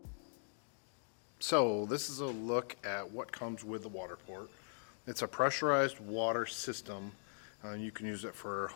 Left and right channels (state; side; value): silent; right; digital silence